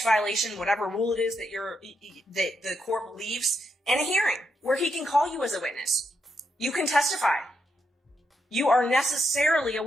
violation, whatever rule it is that the court believes, and a hearing where he can call you as a witness. You can testify. You are necessarily a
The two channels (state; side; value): normal; both; correlation 0.81